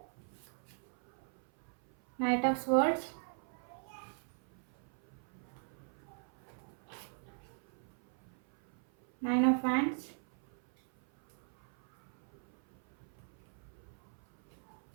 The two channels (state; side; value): silent; left; 52 dB below the other